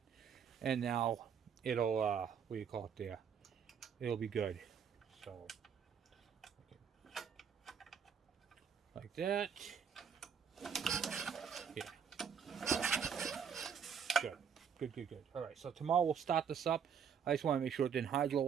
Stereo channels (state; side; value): quieter; left; 7.3 dB